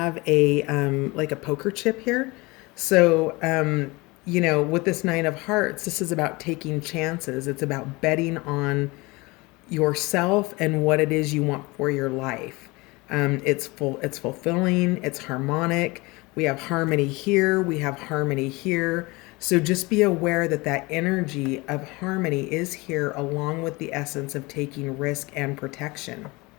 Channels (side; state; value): right; quieter; 24.1 dB